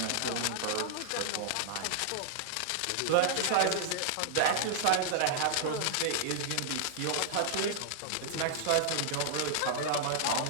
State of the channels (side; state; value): both; different; correlation -0.01